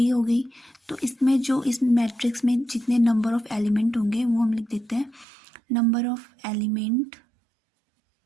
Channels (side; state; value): left; drops out; at 5.2 s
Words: हो गई। तो इसमें जो इस मैट्रिक्स में जितने नंबर ऑफ एलिमेंट होंगे वो हम लिख देते हैं number of element